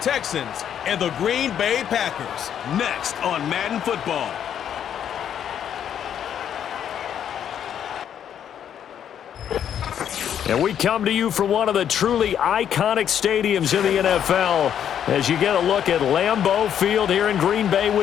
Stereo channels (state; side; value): quieter; right; 9.3 dB